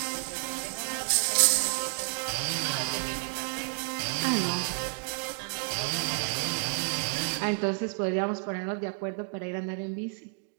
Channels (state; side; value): silent; left; digital silence